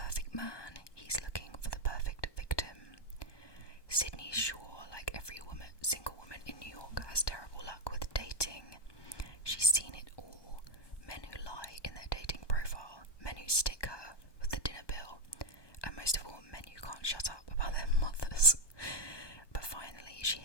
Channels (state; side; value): late; right; 1.2 ms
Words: man, he's looking for the perfect victim. Sydney Shaw, like every single woman in New York, has terrible luck with dating. She's seen it all. Men who lie in their dating profile, men who stick her with the dinner bill, and most of all, men who can't shut up about their mothers. But finally, she